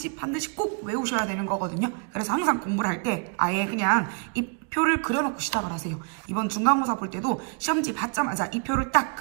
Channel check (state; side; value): quieter; left; 39.5 dB